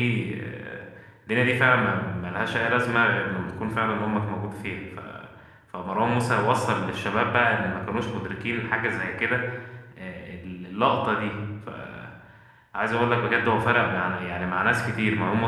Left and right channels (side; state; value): both; identical; correlation 1.00